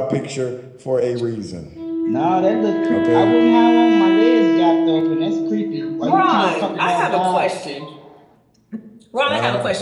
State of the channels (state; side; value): identical; both; correlation 1.00